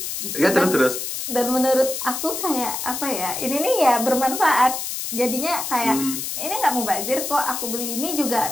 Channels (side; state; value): left; noise; hiss, 5 dB below the sound